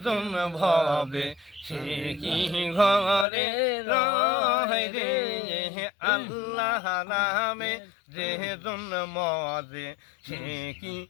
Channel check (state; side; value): drops out; right; at 3.2 s